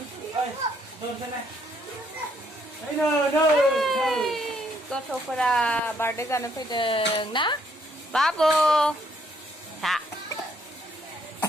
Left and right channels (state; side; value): normal; both; correlation 0.69